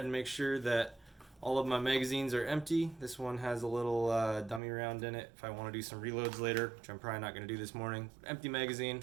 and make sure that all of my magazines are empty. This one has a little dummy round in it if I want to do some reloads later, which I'm probably not going to do this morning. Empty magazine,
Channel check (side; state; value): left; drops out; at 4.6 s